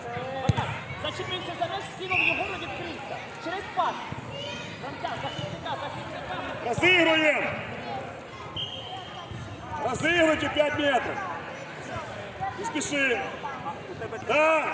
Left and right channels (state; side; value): identical; both; correlation 1.00